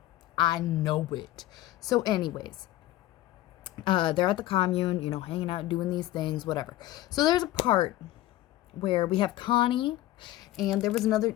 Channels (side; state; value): right; quieter; 15.4 dB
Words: So anyways, they're at the commune, you know, hanging out, doing these things, whatever. So there's a part where we have Connie, and there was another,